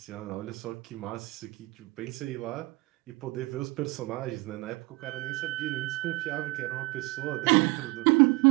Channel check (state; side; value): quieter; left; 23.5 dB